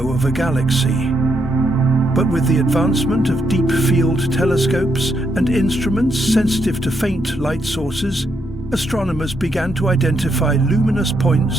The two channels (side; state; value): both; normal; correlation 0.78